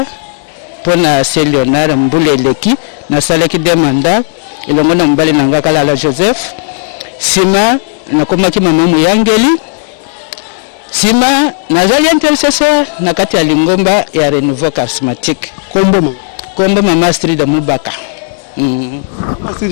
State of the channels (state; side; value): silent; right; digital silence